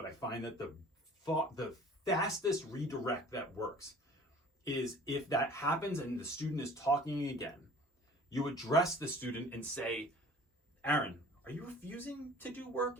I find that the fastest redirect that works is if that happens and the student is talking again, you address the student and say, Aaron, are you refusing to do work?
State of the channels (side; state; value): both; normal; correlation 0.48